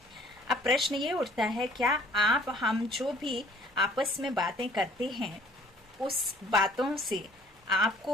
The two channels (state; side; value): normal; both; correlation 0.57